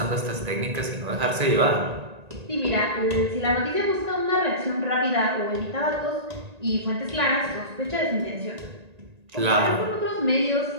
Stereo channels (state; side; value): late; left; 1.8 ms